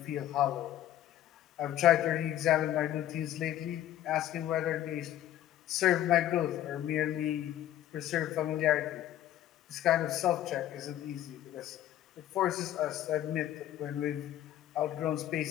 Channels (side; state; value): right; quieter; 12.4 dB